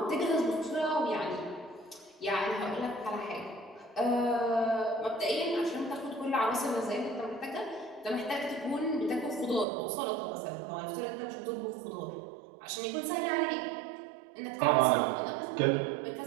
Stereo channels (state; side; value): drops out; left; at 9.7 s